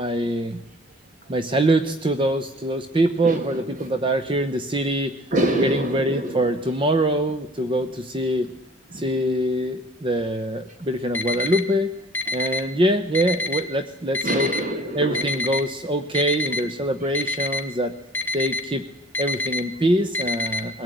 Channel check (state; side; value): normal; both; correlation 0.50